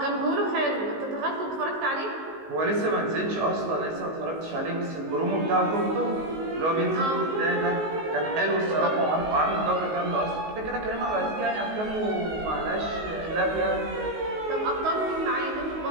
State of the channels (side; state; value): left; late; 19 ms